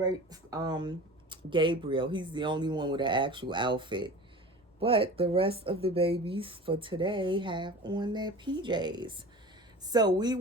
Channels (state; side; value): normal; both; correlation 0.37